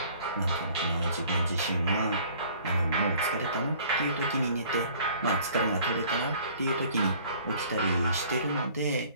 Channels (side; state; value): both; inverted; correlation -0.53